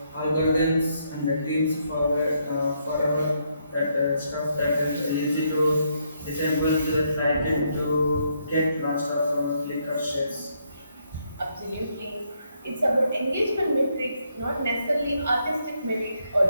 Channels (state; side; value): inverted; both; correlation -0.75